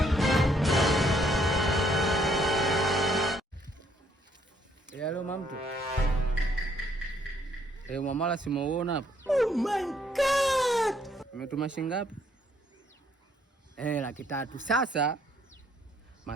Hello mamtu. Mwamala simeuona hapa. Oh my God. Umetuma shilingi ngapi? 300,000. Sasa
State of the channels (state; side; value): normal; both; correlation 0.68